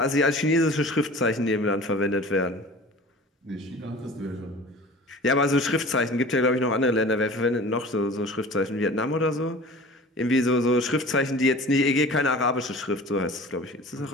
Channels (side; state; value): both; normal; correlation 0.41